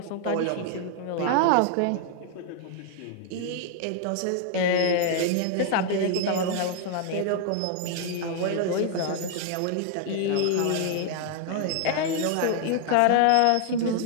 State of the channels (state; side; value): different; both; correlation 0.00